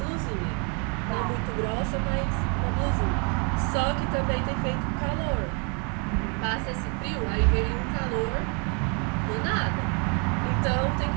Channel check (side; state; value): left; quieter; 35.4 dB